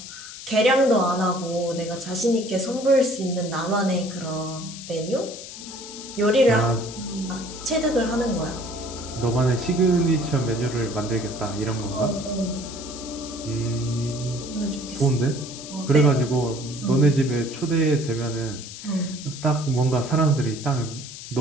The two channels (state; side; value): noise; left; hiss, 12 dB below the sound